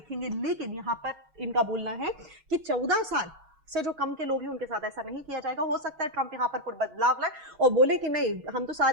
लेकिन यहां पर इनका बोलना है कि 14 साल से जो कम के लोग हैं उनके साथ ऐसा नहीं किया जाएगा। हो सकता है ट्रंप यहां पर कुछ बदलाव लाए और बोले कि नहीं, हम तो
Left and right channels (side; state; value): left; late; 6.3 ms